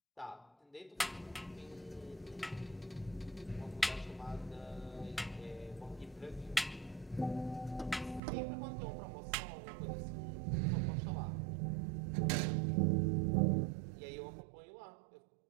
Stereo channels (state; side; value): drops out; left; at 8.2 s